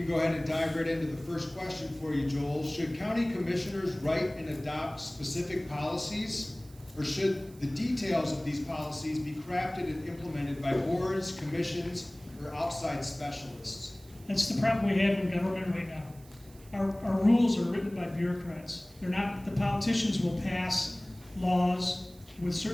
go ahead and dive right into the first question for you, Joel. Should county commissioners write and adopt specific policies, or should the details of these policies be crafted and implemented by boards, commissions, or outside specialists? That's the problem we have in government right now. Our rules are written by bureaucrats. They're not. The politicians will pass laws with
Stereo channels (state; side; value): noise; right; hiss, 24 dB below the sound